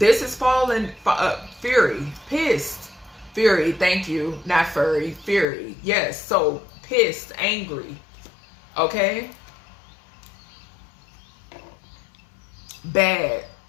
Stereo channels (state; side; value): drops out; right; at 5.5 s